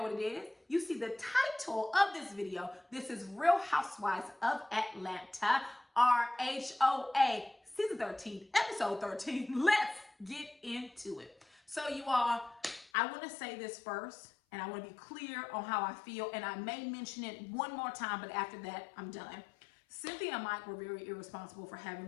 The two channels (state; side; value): drops out; right; at 12.9 s